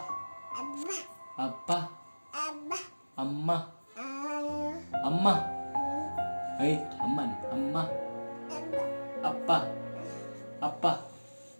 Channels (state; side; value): inverted; both; correlation -1.00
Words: ಅಪ್ಪ ಅಮ್ಮ ಅಮ್ಮ ಐ ಅಮ್ಮ ಅಮ್ಮ ಅಪ್ಪ ಅಪ್ಪ